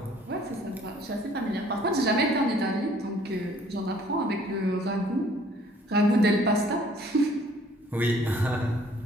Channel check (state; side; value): normal; both; correlation 0.58